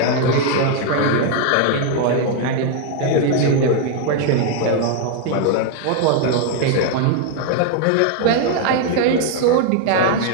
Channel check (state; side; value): different; both; correlation 0.01